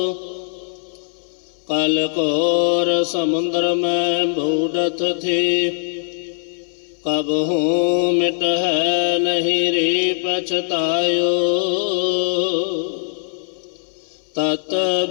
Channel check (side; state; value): right; silent; 61 dB below the other